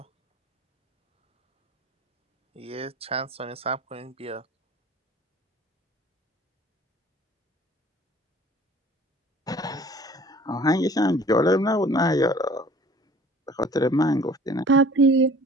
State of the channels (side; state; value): both; normal; correlation 0.49